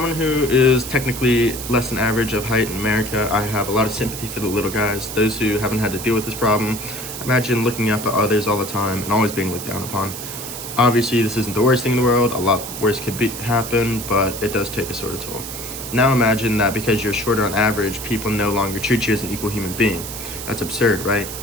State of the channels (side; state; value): right; noise; hiss, 9 dB below the sound